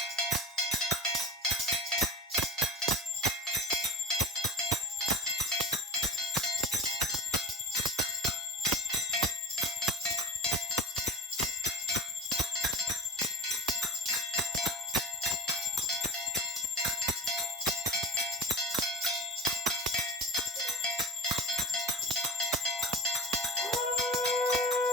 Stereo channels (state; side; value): normal; both; correlation 0.34